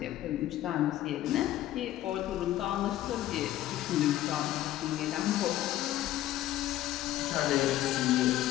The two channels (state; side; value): quieter; right; 13.9 dB